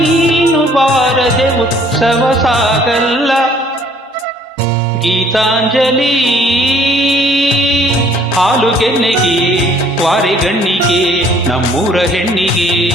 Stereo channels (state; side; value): normal; both; correlation 0.59